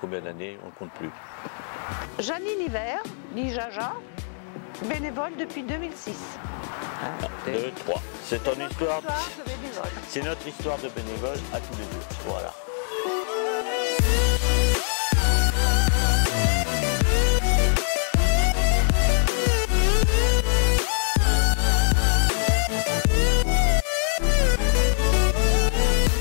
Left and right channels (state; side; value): silent; right; 63 dB below the other